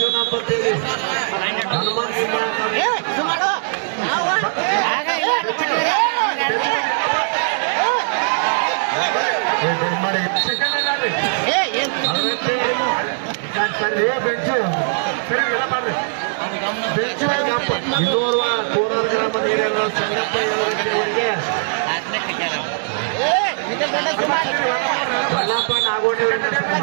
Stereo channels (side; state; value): left; silent; digital silence